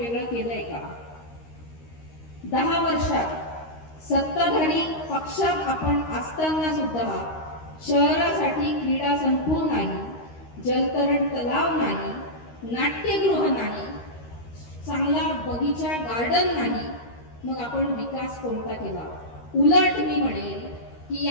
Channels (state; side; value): late; right; 13 ms